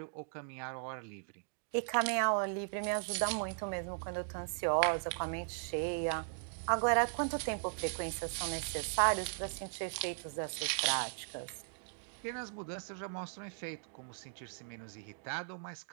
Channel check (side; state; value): left; silent; digital silence